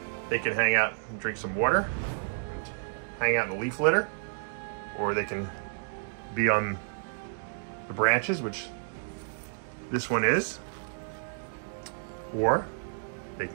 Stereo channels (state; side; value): silent; left; digital silence